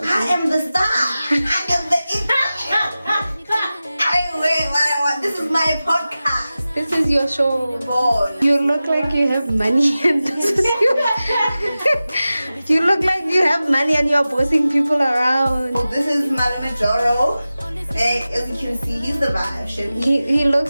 I am the star. I am the This is my podcast. This is your show. Boy. You look like you have money and this is you look like you have money and you're bossing people around. Oh, this is Mwahh Marole. And as you can see, he's the vibe. He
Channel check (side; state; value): both; inverted; correlation -0.95